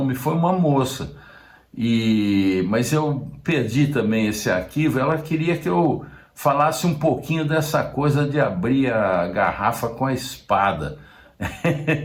foi uma moça, mas eu perdi também esse arquivo. Ela queria que eu falasse um pouquinho dessa coisa de abrir a garrafa com a espada.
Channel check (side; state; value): both; identical; correlation 1.00